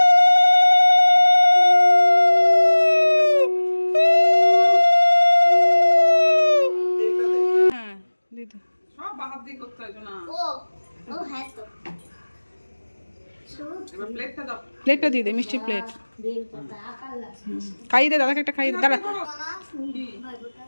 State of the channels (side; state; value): both; inverted; correlation -1.00